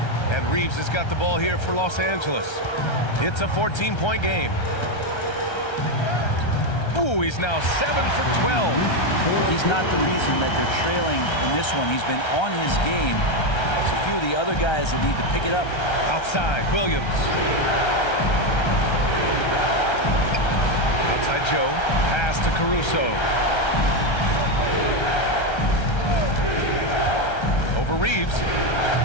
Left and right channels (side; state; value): right; late; 1.3 ms